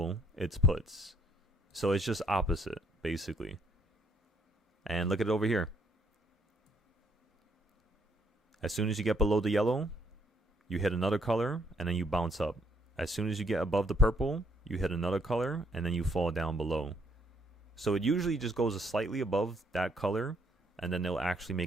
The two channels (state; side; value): normal; both; correlation 0.68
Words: it's puts. So it's just opposite, basically. And look at it over here. As soon as you get below the yellow, you hit another color, and then you bounce up. As soon as you get above the purple, you hit another color, and then you fall down below. So it usually just goes slightly above that color, and then they'll actually